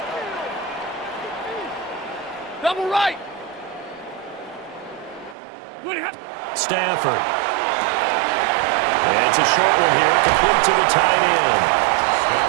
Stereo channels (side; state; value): left; drops out; at 5.4 s